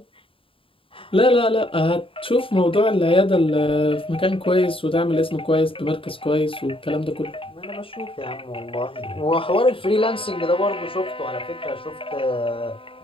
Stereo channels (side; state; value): right; late; 0.26 ms